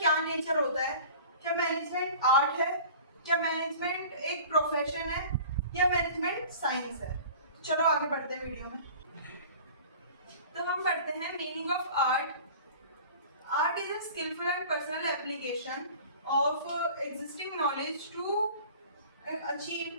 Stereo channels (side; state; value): both; inverted; correlation -0.42